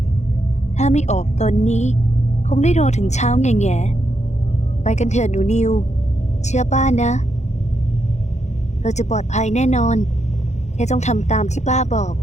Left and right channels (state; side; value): late; right; 0.33 ms